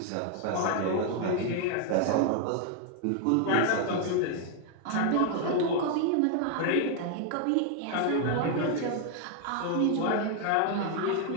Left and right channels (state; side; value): different; both; correlation 0.00